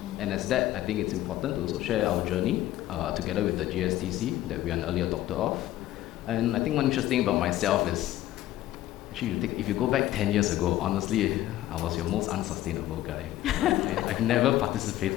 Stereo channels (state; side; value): quieter; right; 14.4 dB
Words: And as that, I think it's important to also share our journey together with the GSTC that we are an early adopter of. And I think one interesting about myself is, actually, if you go back 10 years ago, honestly, I was your most unsustainable guy. I've never